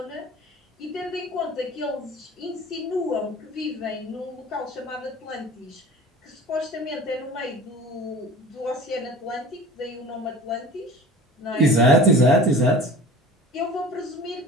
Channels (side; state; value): both; normal; correlation 0.41